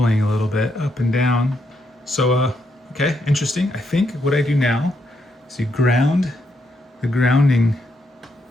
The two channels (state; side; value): normal; both; correlation 0.78